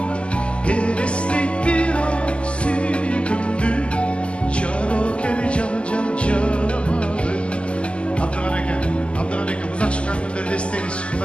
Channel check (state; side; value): late; right; 0.054 ms